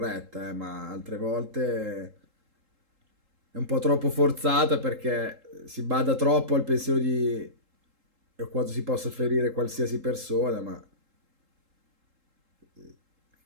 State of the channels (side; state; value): left; late; 3.7 ms